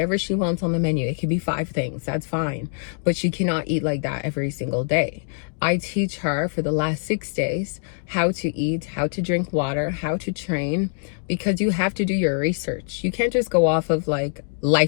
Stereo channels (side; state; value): right; silent; digital silence